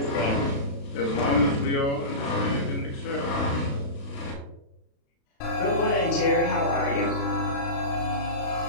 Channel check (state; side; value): late; right; 36 ms